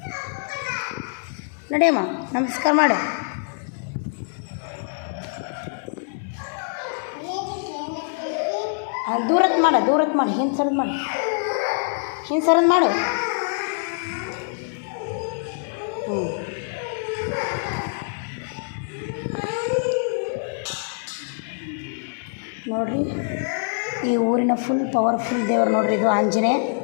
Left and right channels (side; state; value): right; silent; digital silence